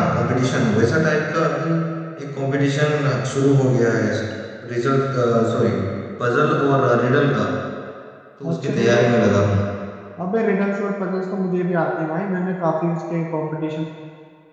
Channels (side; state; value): both; identical; correlation 1.00